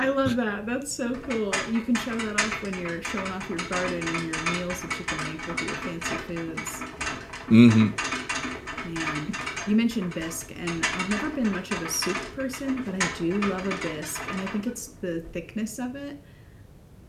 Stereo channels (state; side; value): identical; both; correlation 1.00